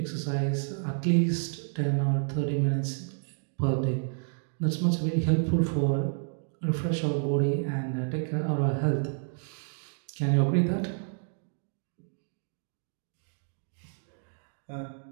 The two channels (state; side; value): silent; left; 56 dB below the other